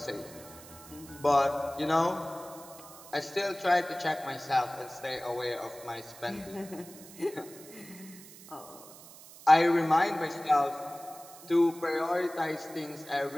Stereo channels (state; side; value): noise; right; hiss, 18 dB below the sound